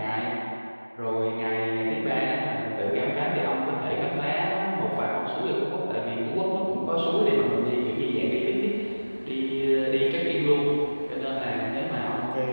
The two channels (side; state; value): both; inverted; correlation -1.00